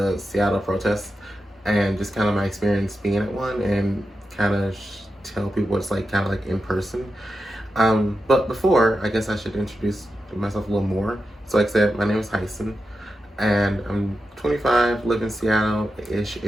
Seattle protests and just kind of my experience being at one and kind of tell people what it's like, kind of like in person. But before, I guess I should introduce myself a little more. So, like I said, my name is Tyson, and I'm 25, live in Seattle-ish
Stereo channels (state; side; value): normal; both; correlation 0.90